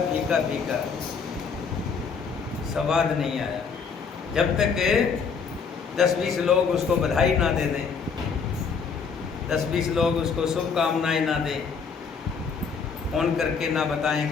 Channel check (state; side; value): quieter; right; 5.7 dB